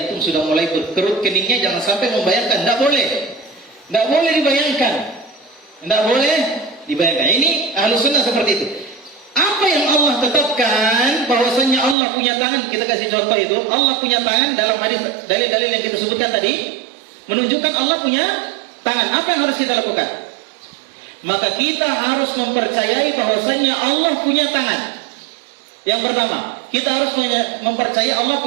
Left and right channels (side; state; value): left; drops out; at 12.0 s